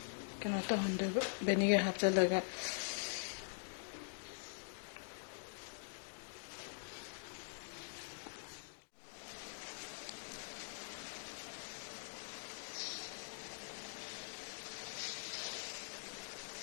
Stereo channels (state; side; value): silent; right; digital silence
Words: ꯀꯩꯅꯣ ꯇꯧꯍꯟꯗꯣꯏꯕ ꯚꯦꯅꯤꯒꯔ ꯍꯥꯞꯆꯤꯜꯂꯒ